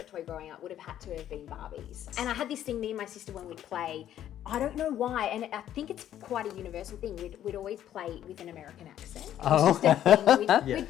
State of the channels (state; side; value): quieter; right; 11.3 dB